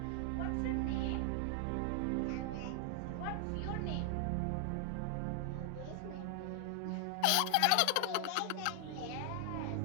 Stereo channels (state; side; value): different; both; correlation 0.00